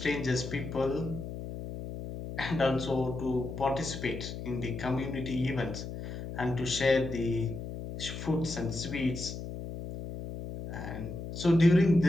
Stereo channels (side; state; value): left; noise; hum, 8 dB below the sound